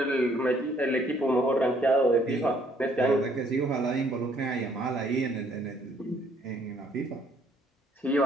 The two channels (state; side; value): normal; both; correlation 0.64